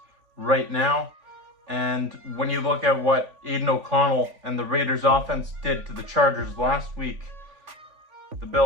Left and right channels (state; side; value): late; left; 3.5 ms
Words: right now. And when you look at what Aiden O'Connell and the Raiders offense did to the Chargers last week, the